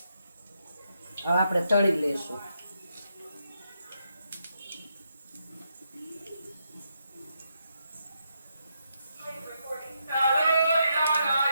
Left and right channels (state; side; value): inverted; both; correlation -0.80